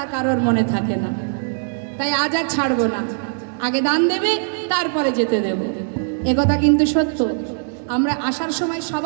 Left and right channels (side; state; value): left; silent; digital silence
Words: কারোর মনে থাকে না। তাই আজ আর ছাড়বো না, আগে দান দেবে তারপরে যেতে দেব। একথা কিন্তু সত্য। আমরা আসার সময়